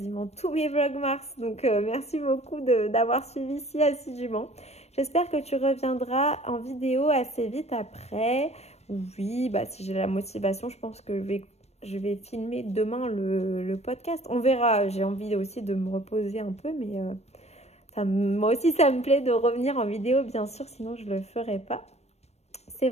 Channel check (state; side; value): late; right; 0.31 ms